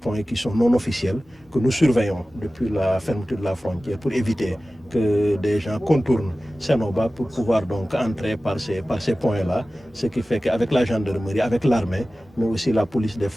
qui sont non officiels, que nous surveillons depuis la fermeture de la frontière pour éviter que des gens contournent Sénoba pour pouvoir donc entrer par ces points-là. Ce qui fait qu'avec la gendarmerie, avec l'armée, mais aussi la police des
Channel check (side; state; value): both; normal; correlation 0.96